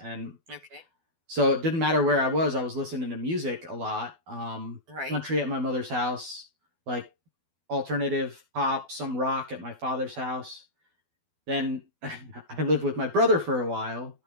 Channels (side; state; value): left; late; 12 ms